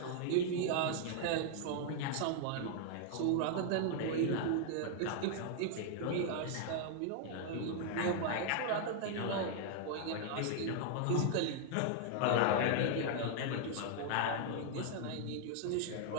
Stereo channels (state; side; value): different; both; correlation 0.00